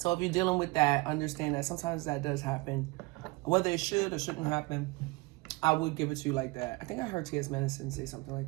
if you're dealing with that, understand that sometimes that does happen. Whether it should or shouldn't happen, I would give it to you like that. I think I heard T.S. Madison say something like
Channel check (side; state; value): left; quieter; 24.3 dB